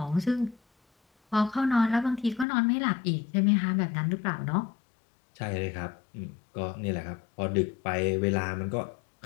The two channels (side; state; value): right; drops out; at 2.5 s